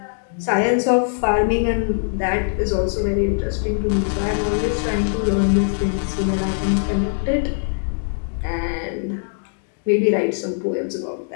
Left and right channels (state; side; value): silent; right; digital silence